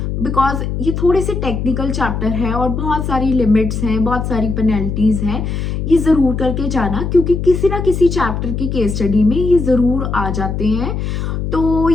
because ये थोड़े से टेक्निकल चैप्टर है और बहुत सारी लिमिट्स हैं, बहुत सारी पेनल्टीज हैं. ये ज़रूर करके जाना क्योंकि किसी ना किसी चैप्टर की केस स्टडी में ये ज़रूर आ जाते हैं. तो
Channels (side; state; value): left; noise; hum, 3 dB below the sound